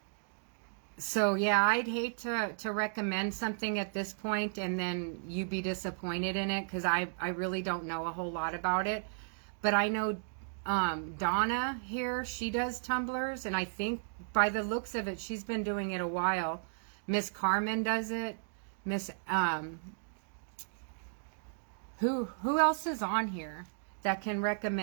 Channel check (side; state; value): left; silent; digital silence